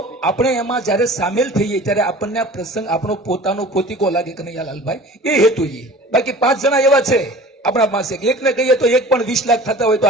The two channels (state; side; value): normal; both; correlation 0.43